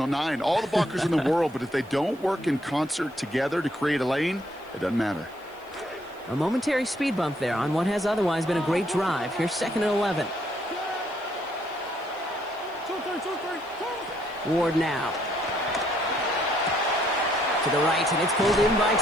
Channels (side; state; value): right; noise; hiss, 28 dB below the sound